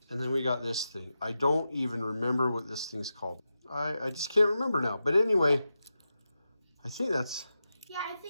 and then we got this thing. I don't even remember what this thing's called. I just can't remember now. But anyway, I think that's... Yeah, I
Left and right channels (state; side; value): inverted; both; correlation -0.90